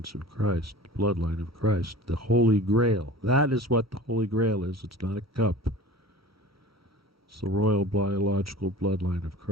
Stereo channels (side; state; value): both; normal; correlation 0.39